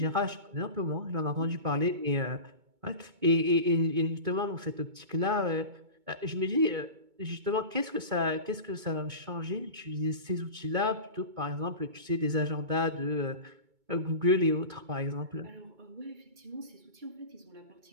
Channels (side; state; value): left; late; 2.2 ms